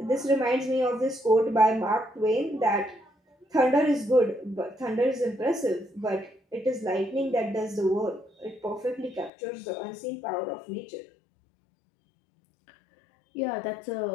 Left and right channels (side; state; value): right; drops out; at 9.3 s